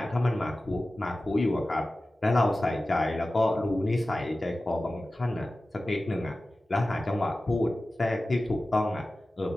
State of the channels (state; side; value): normal; both; correlation 0.96